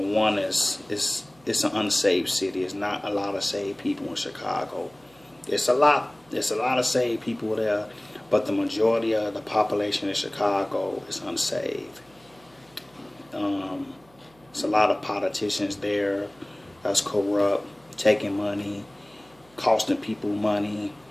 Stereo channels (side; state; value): right; noise; hum, 30 dB below the sound